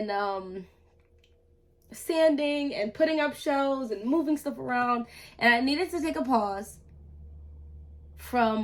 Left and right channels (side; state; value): both; identical; correlation 1.00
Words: sanding and putting up shows and moving stuff around, and I needed to take a pause